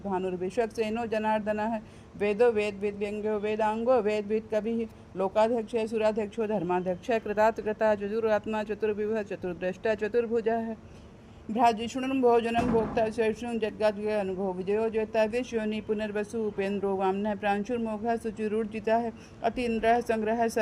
भानुर्विश्वक्सेनो जनार्दनः वेदो वेद विद्व्यंग्यो वेदांगो वेद विद कविः लोकाध्यक्ष सुराध्यक्षो धर्माध्यक्ष कृतात्कृता चतुरात्मा चतुर्विभः चतुर्द्रष्टा चतुर्भुजः भ्राजिषुणुं भोजनं भोक्ता शर्षुं जद्गाद्य अनुभव विजयो ज्योता विश्वनि पुनर्वसु उपेन्द्रो वामनः प्रांशुर्मोघः शुचिरूर्जितः अतीन्द्रः संग्रह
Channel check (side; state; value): both; identical; correlation 1.00